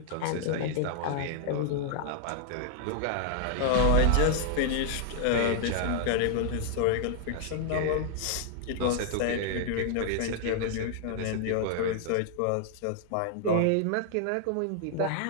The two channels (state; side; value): different; both; correlation 0.00